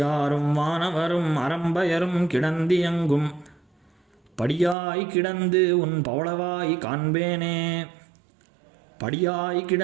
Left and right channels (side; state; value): left; drops out; at 4.8 s